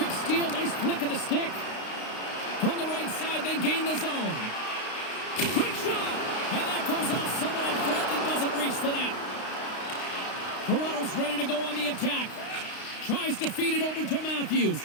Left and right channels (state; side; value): late; right; 32 ms